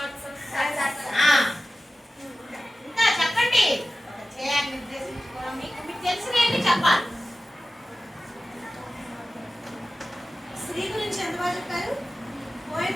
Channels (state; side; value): normal; both; correlation 0.94